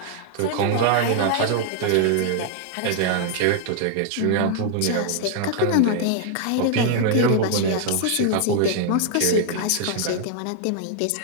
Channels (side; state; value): both; different; correlation 0.00